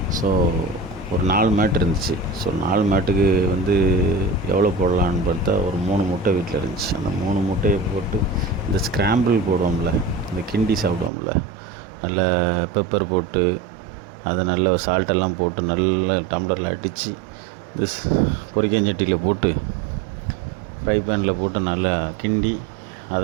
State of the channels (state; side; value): drops out; left; at 11.1 s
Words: ஸோ ஒரு 4 மேட் இருந்துச்சு. ஸோ 4 மேட்டுக்கு எவ்வளோ போடலான்னு பார்த்தா ஒரு 3 முட்டை வீட்டில் இருந்துச்சு. அந்த 3 முட்டையை போட்டு இந்த ஸ்க்ராம்பிள் போடுவோம்ல, இந்த கிண்டி சாப்பிடுவோம்ல, நல்லா பெப்பர் போட்டு அதை நல்லா சால்ட்டெல்லாம் போட்டு நல்லா டம்ளரில் அடித்து இந்த பொரிக்கஞ்சட்டியில் போட்டு ஃப்ரை பேனில் போட்டு நல்லா கிண்டி